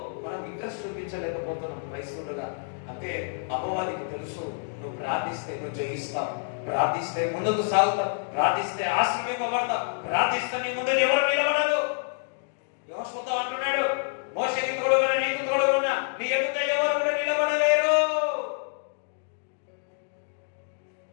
మనం ఇంట్రెస్ట్ చూపించలేకపోతున్నాం క్రైస్తవులుగా? అంటే అపవాదికి తెలుసు, నువ్వు ప్రార్థిస్తే నువ్వు జయిస్తావు, ప్రార్థిస్తే ముందుకు సాగుతావు, ప్రార్థిస్తే ఆశీర్వదింపబడతావు, ప్రార్థిస్తే నీ ముందు ఎవరు నిలబడరు. యెహోషువతో అంటున్నాడు, మోషేకి తోడుగా నీకు తోడుగా నీ ఎదుట ఎవరు కూడా నిలబడలేరు.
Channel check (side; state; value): right; silent; digital silence